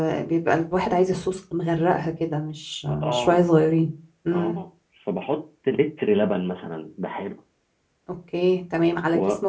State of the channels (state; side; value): identical; both; correlation 1.00